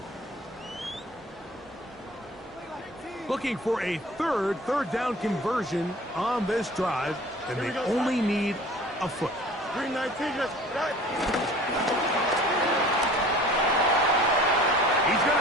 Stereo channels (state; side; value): normal; both; correlation 0.46